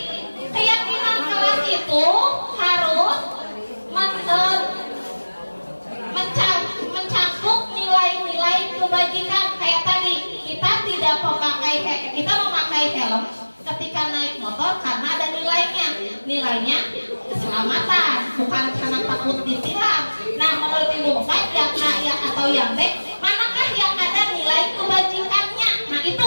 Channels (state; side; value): inverted; both; correlation -1.00